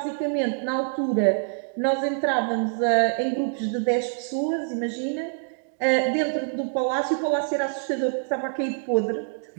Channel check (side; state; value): left; silent; digital silence